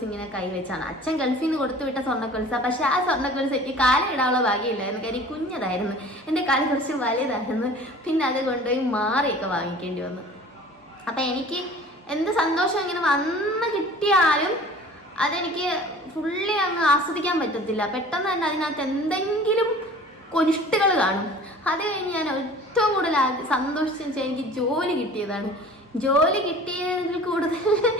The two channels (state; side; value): normal; both; correlation 0.44